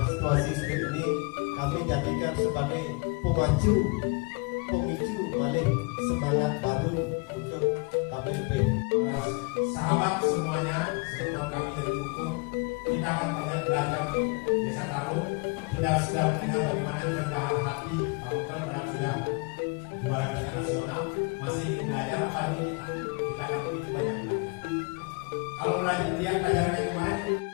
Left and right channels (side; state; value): right; quieter; 30.5 dB